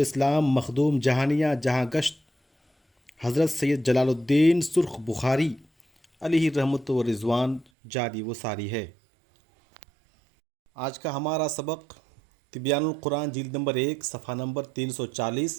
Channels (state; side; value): drops out; left; at 7.7 s